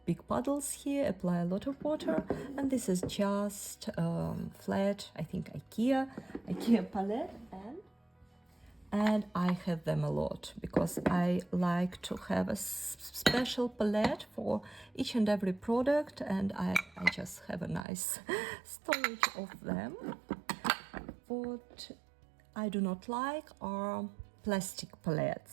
big puddles here, apply a lot of water, and this is just flat, I think IKEA palette, and I have them a lot because I like to have a special palette for each and every product, and I just have a nice storage of them. What I do not like are plastic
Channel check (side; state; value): left; drops out; at 17.9 s